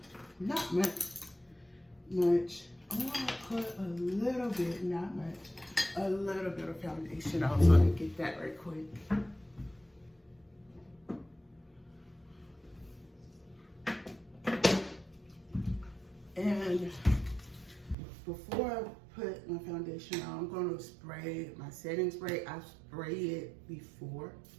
not much. I want to put a little bit, not much, a little bit of foundation on, so I can get that right quick. And before I put my foundation on, I'm going to spray my setting spray. I spray it before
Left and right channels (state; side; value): drops out; left; at 17.9 s